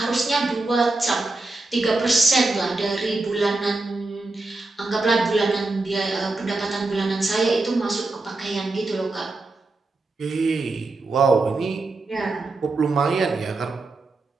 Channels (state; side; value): quieter; left; 3.3 dB